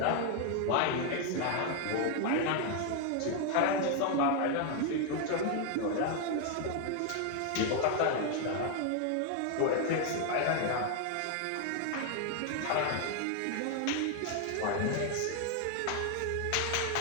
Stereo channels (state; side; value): different; both; correlation 0.01